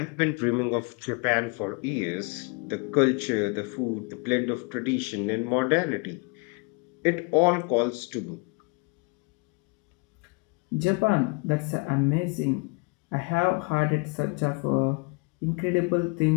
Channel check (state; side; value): quieter; right; 31.5 dB